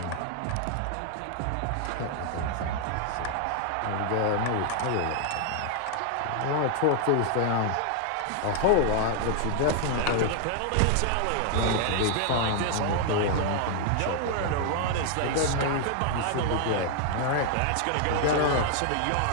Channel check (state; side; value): different; both; correlation 0.00